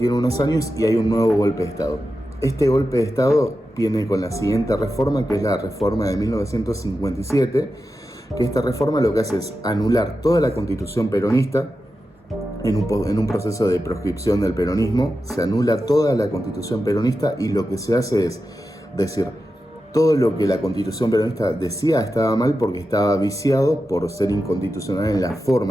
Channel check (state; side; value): normal; both; correlation 0.91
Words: unos años y hay un nuevo golpe de Estado. Este golpe de Estado viene con la siguiente reforma, que es la reforma de 1957, que esta reforma lo que hace es anular toda la Constitución peronista. En un proceso de proscripción del peronismo, se anula toda la Constitución peronista, y lo que se hace es decir, todo lo que la Constitución peronista decía estaba mal porque estaba viciado por ser inconstitucional en la